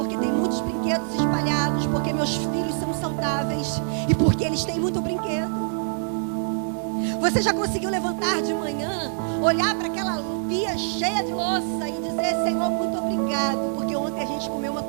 tem muitos brinquedos espalhados, porque meus filhos são saudáveis e porque eles têm muito brinquedo. Você já conseguiu levantar de manhã, olhar para aquela pia cheia de louça e dizer, Senhor, muito obrigado, porque ontem a gente comeu uma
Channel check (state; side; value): silent; left; digital silence